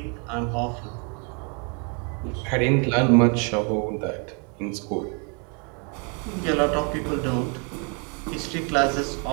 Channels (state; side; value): quieter; left; 36.0 dB